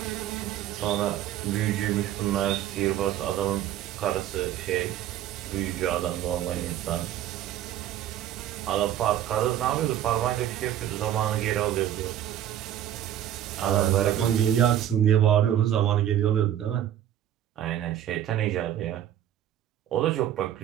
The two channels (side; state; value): left; quieter; 11.4 dB